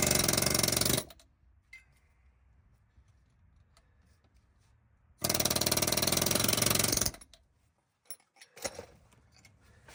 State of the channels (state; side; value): identical; both; correlation 1.00